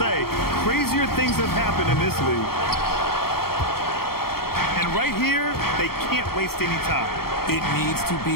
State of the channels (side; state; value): right; late; 0.94 ms